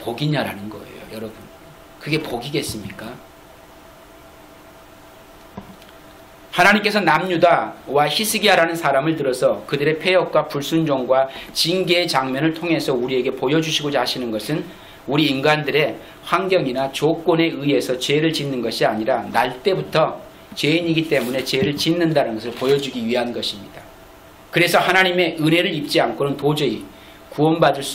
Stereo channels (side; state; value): both; identical; correlation 1.00